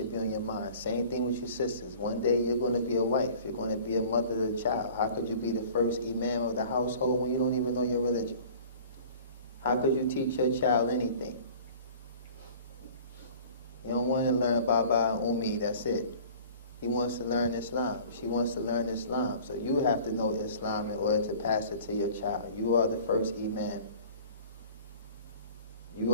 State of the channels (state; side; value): inverted; both; correlation -0.46